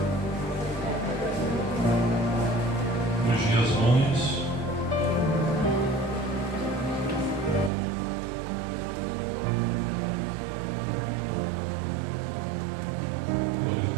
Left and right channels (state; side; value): drops out; left; at 7.7 s